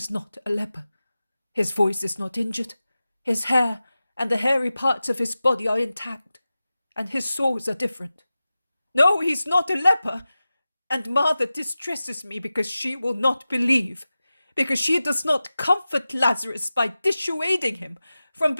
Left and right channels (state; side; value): inverted; both; correlation -0.95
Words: not a leper. His voice is not injured, his hair and the hairy parts of his body are intact, and his sores are different. No, he's not a leper. And Martha distresses me because she will not believe, because she does not comfort Lazarus by dissuading him from